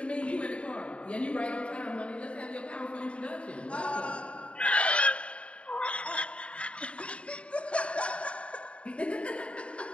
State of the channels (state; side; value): late; right; 0.060 ms